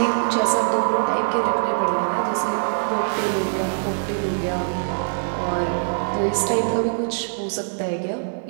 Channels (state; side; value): silent; left; digital silence